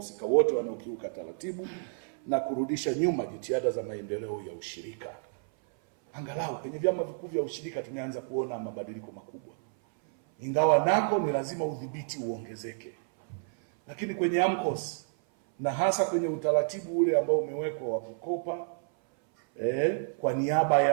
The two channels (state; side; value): silent; left; 56 dB below the other